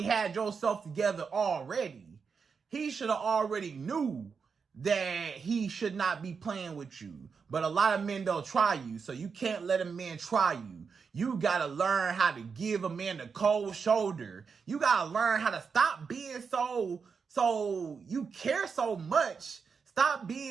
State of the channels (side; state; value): left; quieter; 5.7 dB